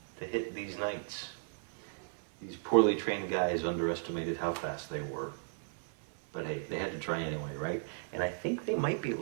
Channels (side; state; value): left; silent; 54 dB below the other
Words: to hit these knights. These poorly trained guys underestimated how fast they were. But hey, they had to try anyway, right? And I think they might be